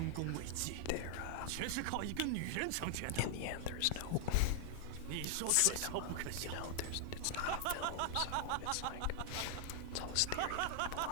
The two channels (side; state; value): both; different; correlation 0.00